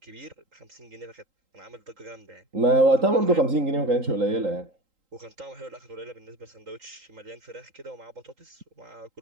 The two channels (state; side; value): late; left; 3.8 ms